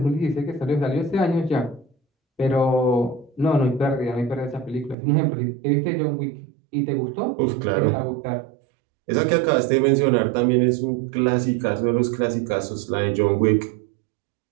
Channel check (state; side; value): drops out; left; at 5.0 s